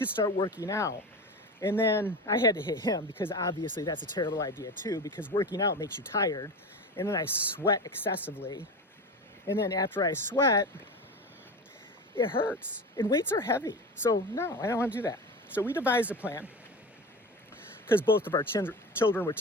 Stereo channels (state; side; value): normal; both; correlation 0.27